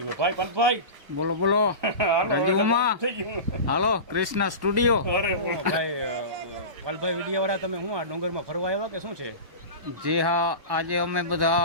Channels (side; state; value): left; late; 1.1 ms